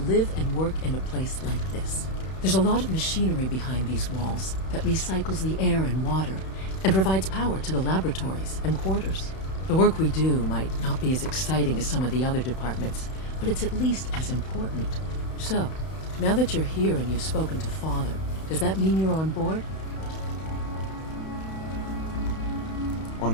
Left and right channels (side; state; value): right; late; 31 ms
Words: live and work in a place like this. There's a lot of machinery behind these walls that recycles the air and water and provides power to the laboratories and quarters. The work we do might not be as exciting as some of the other departments, but it's at least as important. So, now that you're here and you've spoken to Father, does that mean you're on board? On